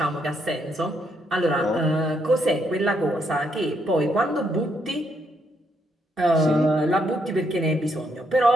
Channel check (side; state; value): both; normal; correlation 0.75